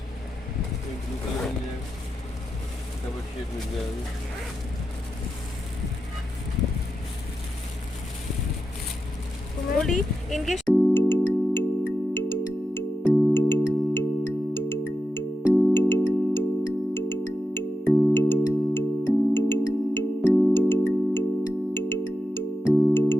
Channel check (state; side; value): normal; both; correlation 0.89